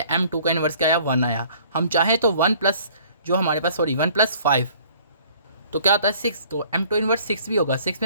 M2 का इन्वर्स क्या आया, 1 आया। हम चाहें तो 1 प्लस जो हमारे पास 1 + 5 तो क्या होता है 6, तो M2 इन्वर्स 6 भी होगा। 6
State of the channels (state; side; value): inverted; both; correlation -0.55